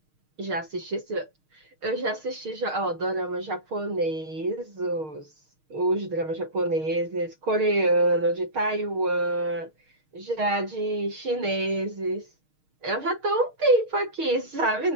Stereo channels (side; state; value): left; late; 6.4 ms